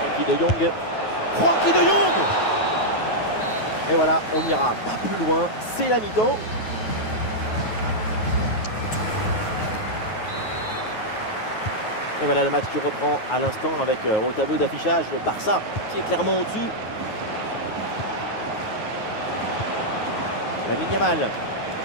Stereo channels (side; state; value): right; late; 9.3 ms